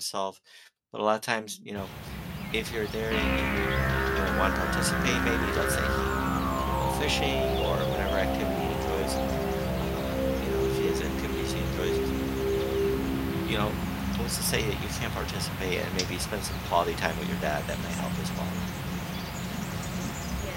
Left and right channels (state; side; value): identical; both; correlation 1.00